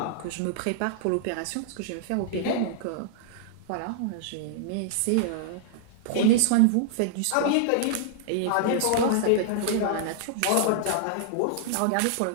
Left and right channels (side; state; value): both; different; correlation -0.01